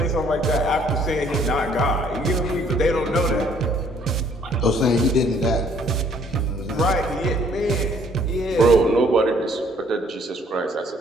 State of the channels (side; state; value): both; normal; correlation 0.62